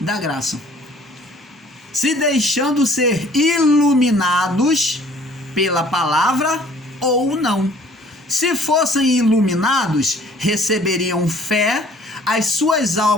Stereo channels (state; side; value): normal; both; correlation 0.55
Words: graça. Se deixando ser iluminados pela palavra ou não. Se fossem iluminados, receberiam fé, as suas